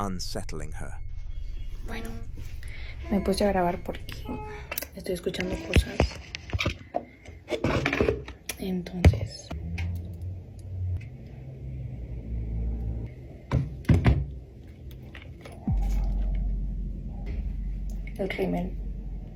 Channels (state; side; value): identical; both; correlation 1.00